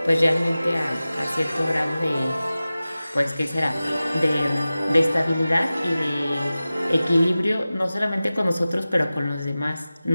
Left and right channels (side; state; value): both; inverted; correlation -0.96